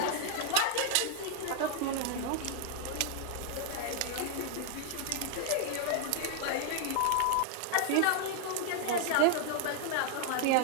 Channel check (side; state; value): both; different; correlation 0.00